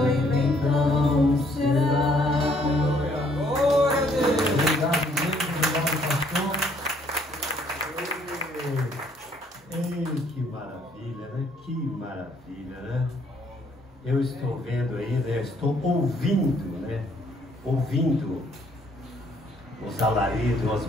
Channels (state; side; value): normal; both; correlation 0.65